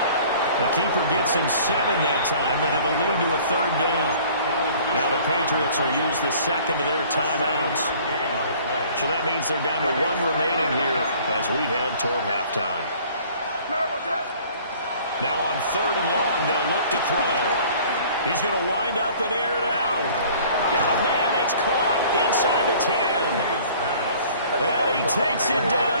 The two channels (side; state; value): both; inverted; correlation -0.51